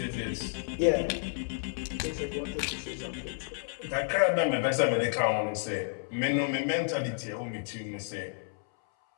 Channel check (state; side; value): silent; right; 57 dB below the other